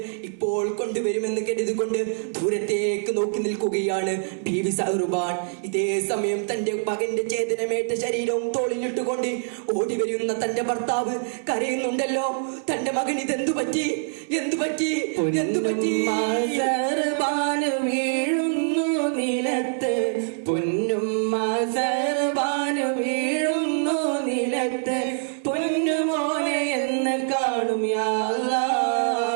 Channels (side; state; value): left; silent; 62 dB below the other